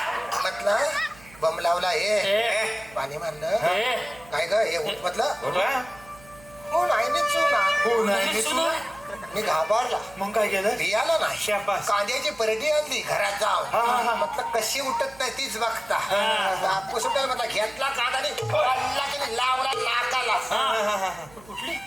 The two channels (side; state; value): right; noise; hum, 23 dB below the sound